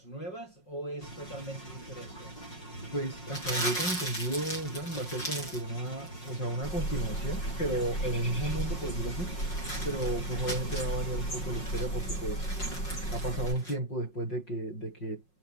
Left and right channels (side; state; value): right; late; 5.5 ms